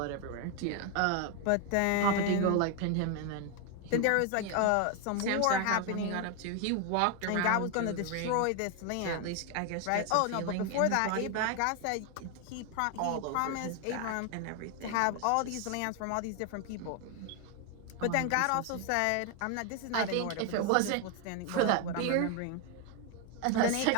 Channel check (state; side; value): different; both; correlation 0.01